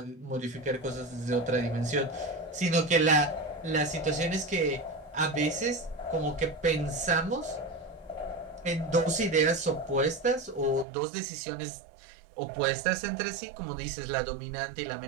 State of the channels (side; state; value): left; drops out; at 10.9 s